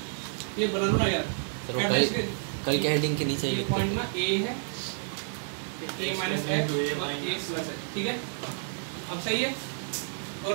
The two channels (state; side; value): silent; left; digital silence